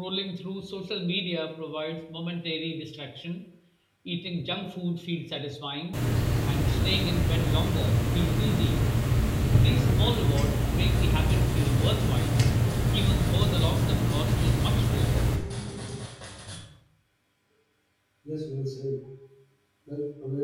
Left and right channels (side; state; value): both; identical; correlation 1.00